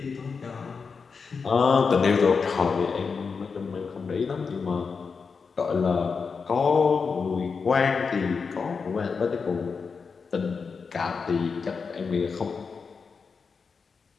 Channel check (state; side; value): quieter; right; 5.3 dB